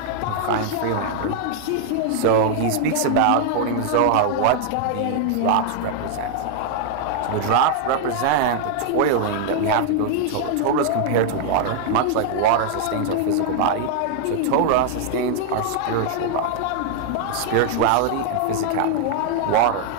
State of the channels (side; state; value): both; different; correlation 0.00